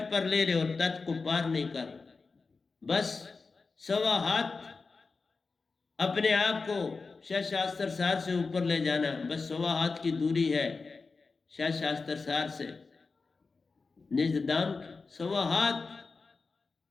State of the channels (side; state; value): right; quieter; 4.3 dB